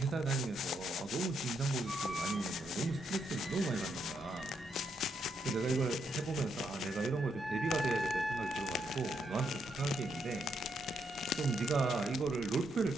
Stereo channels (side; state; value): both; normal; correlation 0.78